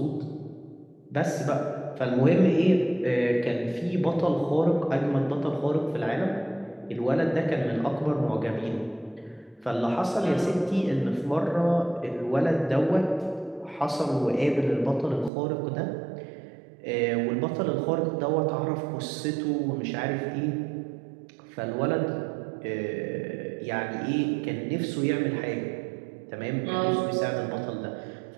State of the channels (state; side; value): drops out; left; at 15.3 s